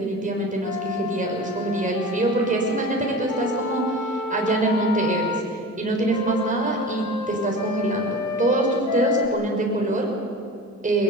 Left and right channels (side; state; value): both; normal; correlation 0.34